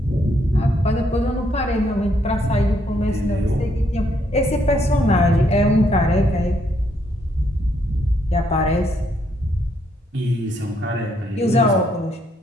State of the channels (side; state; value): both; normal; correlation 0.73